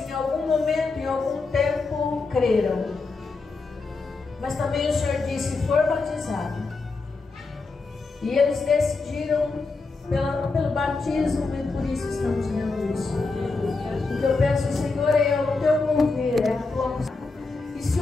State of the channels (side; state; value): right; quieter; 3.9 dB